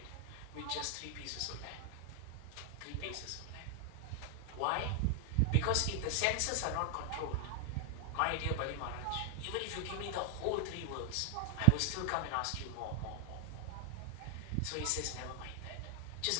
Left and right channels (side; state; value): both; different; correlation 0.00